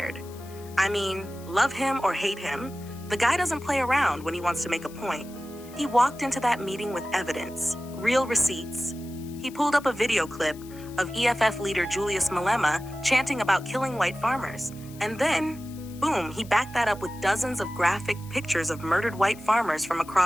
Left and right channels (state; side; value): noise; left; hiss, 21 dB below the sound